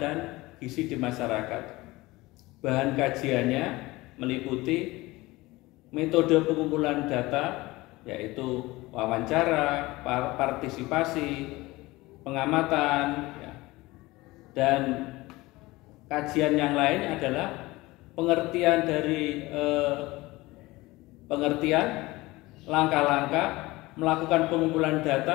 gizi di masyarakat. Bahan kajiannya meliputi metode pengumpulan data, yaitu wawancara, partisipasi, pengamatan, dan kajian yang lain adalah pengertian dari langkah-langkah melakukan pengumpulan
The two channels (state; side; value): quieter; right; 20.5 dB